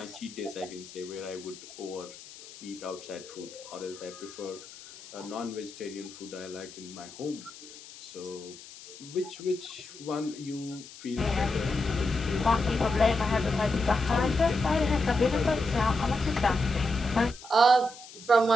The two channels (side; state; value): left; noise; hiss, 17 dB below the sound